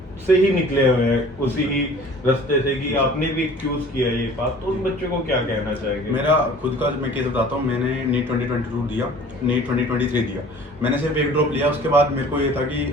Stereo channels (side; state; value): both; normal; correlation 0.48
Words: से ही निकले हुए हैं, उसी ही रास्ते से कि आपने भी चूज किया ये बात, तो उन बच्चों को क्या कहना चाहेंगे? मेरा खुद का मैं केस बताता हूँ। मैंने नीट 2022 दिया, नीट 2023 दिया। मैंने सिर्फ एक ड्रॉप लिया, उसके बाद मेरे को ये था कि